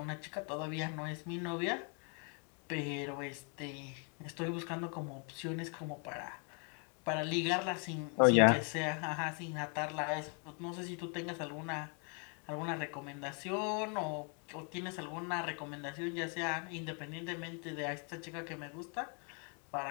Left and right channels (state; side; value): quieter; right; 38.0 dB